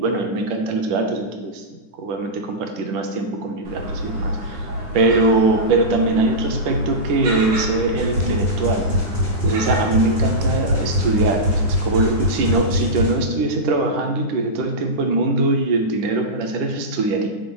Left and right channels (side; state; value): left; late; 9.7 ms